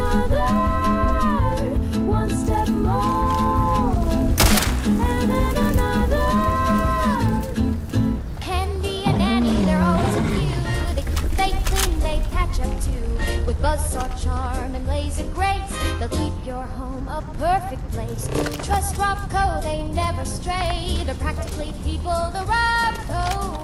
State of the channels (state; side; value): identical; both; correlation 1.00